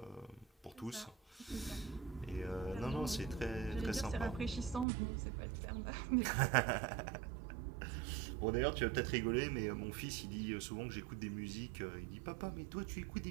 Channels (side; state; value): left; drops out; at 4.9 s